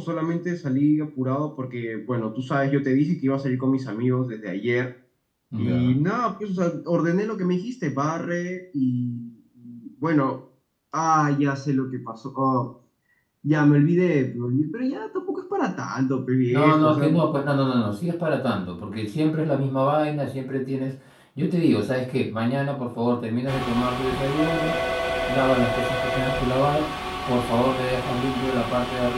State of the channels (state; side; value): identical; both; correlation 1.00